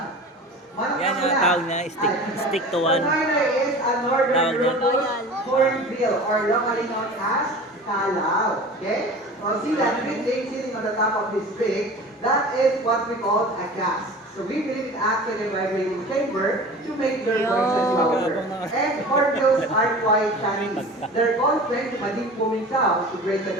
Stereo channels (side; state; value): both; normal; correlation 0.38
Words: Yan ang tawag niya, stick to one. The noy is a northern Tawag niya. rufous hornbill or locally known as kalaw. Okay? So see that green thing sitting on the top of his beak, that is what we call a gas. So we believe it acts like a vibrating chamber to make their Yo. voices louder. And hornbills are quite Chinese. They're called friends to deep booming sounds to break the